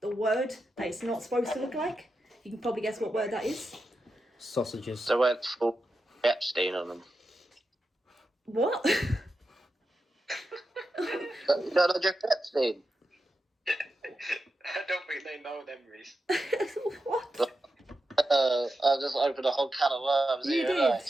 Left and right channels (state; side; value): normal; both; correlation 0.89